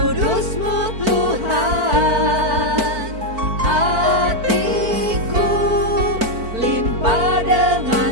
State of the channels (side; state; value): left; late; 4.5 ms